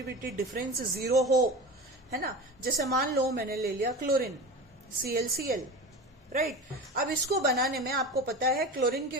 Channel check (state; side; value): normal; both; correlation 0.30